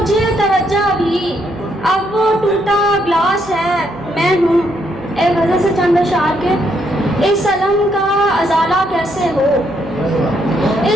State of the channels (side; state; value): right; noise; hum, 19 dB below the sound